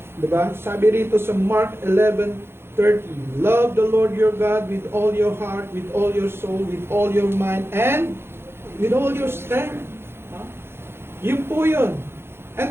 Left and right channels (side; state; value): left; late; 0.11 ms